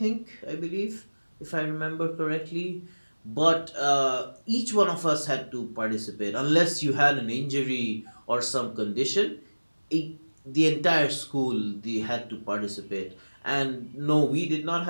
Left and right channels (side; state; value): both; inverted; correlation -1.00